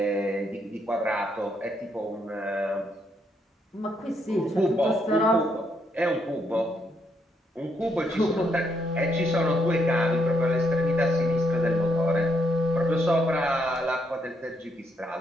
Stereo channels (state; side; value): normal; both; correlation 0.76